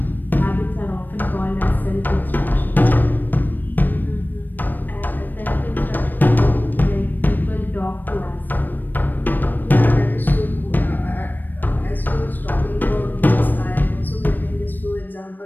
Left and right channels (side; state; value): right; late; 0.090 ms